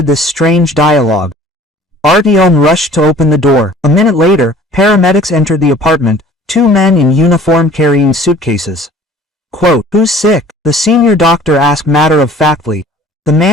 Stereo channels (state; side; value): normal; both; correlation 0.49